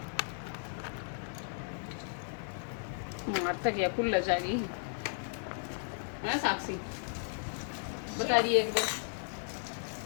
मारता क्या खुल जाएगी है साक्षी, बता रही है एक बार।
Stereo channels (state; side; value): silent; right; digital silence